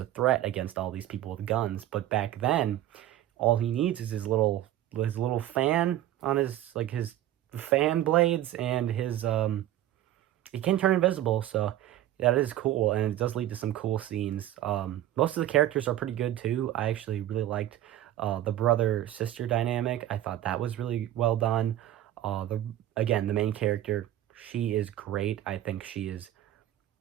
threat against all these people with guns. But back then, all he needs is his little fan on his fan blades and his he can turn invisible, so that is cool, and it does lead to some cool scenes. Most of the characters are pretty good too. I actually really liked the brother-sister dynamic. I thought that was really well done. The main character, she is great. I think she is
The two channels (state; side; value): quieter; left; 12.9 dB